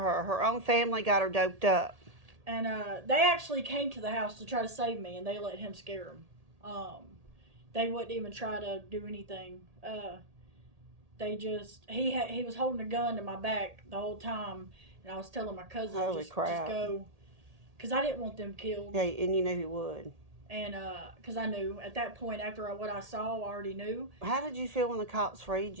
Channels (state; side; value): late; left; 1.8 ms